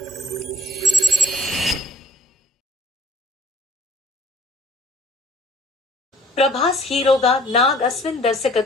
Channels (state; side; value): normal; both; correlation 0.57